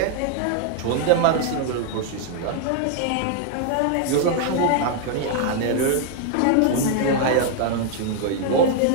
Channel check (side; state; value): both; different; correlation 0.00